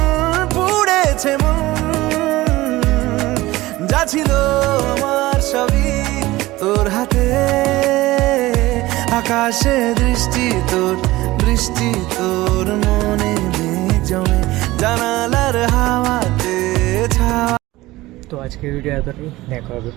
পুড়েছে মন, যা ছিল আমার সবই তোর হাতে। আকাশে দৃষ্টি তোর, বৃষ্টি তোর মনে মেঘ জমে, জানালার হাওয়াতে ছাওয়া। তো আজকের ভিডিও এতটাই, দেখা হবে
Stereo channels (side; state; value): left; quieter; 18.5 dB